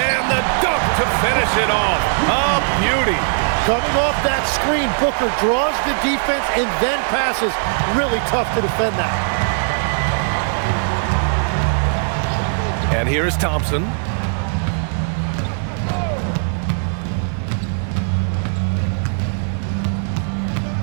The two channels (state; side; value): silent; left; digital silence